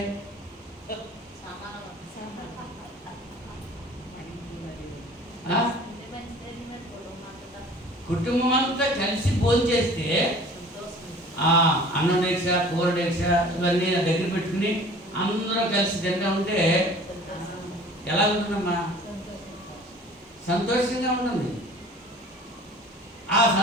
కుటుంబం అంతా కలిసి భోజనం చేస్తే అన్నం డేక్ష, కూర డేక్ష ఇవన్నీ దగ్గర పెట్టుకుని అందరూ కలిసి తింటా ఉంటే ఎలా ఉంటుందమ్మా? సంతోషంగా ఉంటుంది. ఆ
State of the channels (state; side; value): normal; both; correlation 0.47